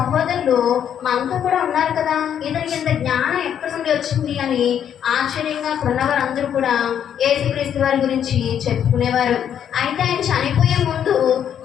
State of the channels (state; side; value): quieter; right; 9.1 dB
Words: మనతో కూడా ఉన్నారు కదా, ఇతనికి ఇంత జ్ఞానం ఎక్కడి నుండి వచ్చింది అని ఆశ్చర్యంగా ఉన్నవారు అందరూ కూడా యేసుక్రీస్తు వారి గురించి చెప్పుకునేవారు. అయితే ఆయన చనిపోయే ముందు